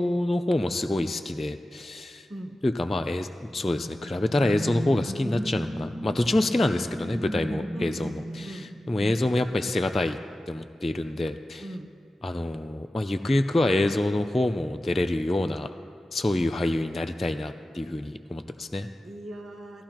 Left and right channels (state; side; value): normal; both; correlation 0.94